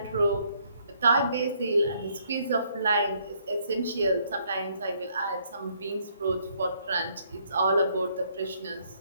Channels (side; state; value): both; inverted; correlation -0.68